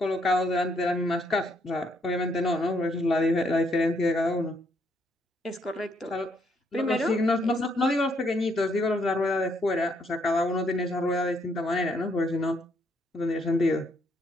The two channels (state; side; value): normal; both; correlation 0.72